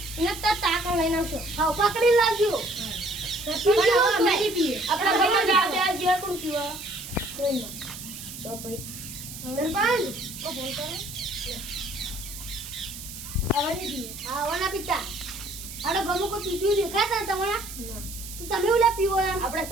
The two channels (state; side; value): noise; right; hiss, 11 dB below the sound